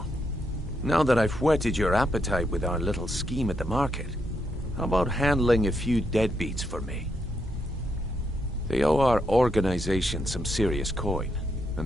now that I've whetted your appetite with our little scheme at the market, how about handling a few deadbeats for me? They owe our organization some serious coin,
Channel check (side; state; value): both; normal; correlation 0.79